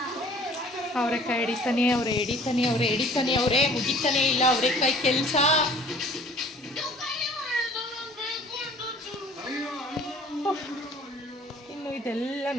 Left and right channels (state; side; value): normal; both; correlation 0.51